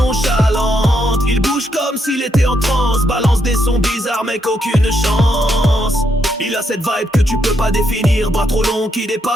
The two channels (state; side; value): normal; both; correlation 0.78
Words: Il bouge comme s'il était en transe, balance des sons bizarres mec aucune chance. Il a cette vibe que tu peux pas définir, bras trop long qui